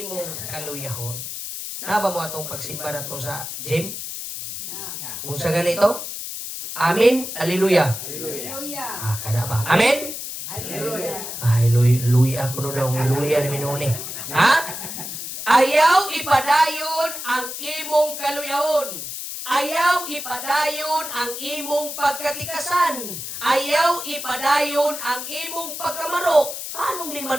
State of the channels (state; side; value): noise; left; hiss, 7 dB below the sound